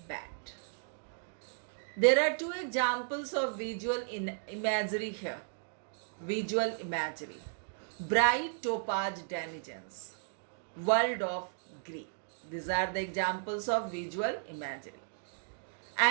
band. There are 2 examples of visual imagery here. Visual imagery. Bright topaz denizens, world of green. These are the examples of visual imagery.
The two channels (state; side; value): silent; left; digital silence